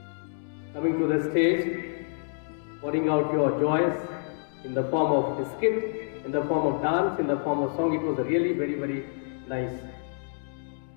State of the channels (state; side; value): silent; right; digital silence